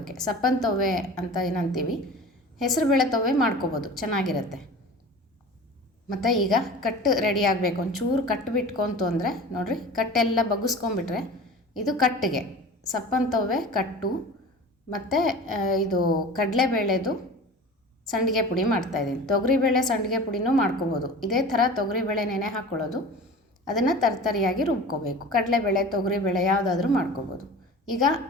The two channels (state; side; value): normal; both; correlation 0.37